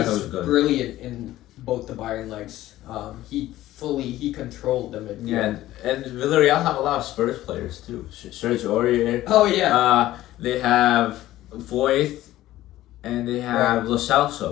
was good. Brilliant in both the Bayern legs. He controlled the midfield. Yeah, and Villareal have a lot of Spurs players too. Serge Aurier. Oh yeah. They have Voith, and they have Lo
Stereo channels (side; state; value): right; quieter; 15.1 dB